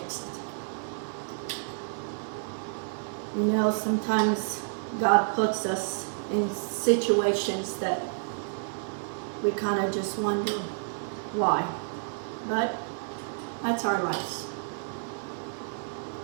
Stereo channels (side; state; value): left; silent; digital silence